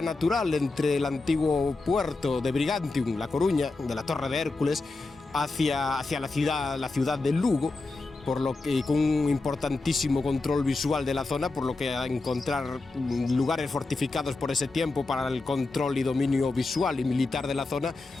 natural entre el antiguo puerto de Brigantium, La Coruña, de la Torre de Hércules, hacia la ciudad de Lugo, por lo que con un importantísimo control visual de la zona, por lo que a encontrar lugares fortificados por ese tiempo para el control y dominio visual y militar de la zona,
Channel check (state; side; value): quieter; right; 3.5 dB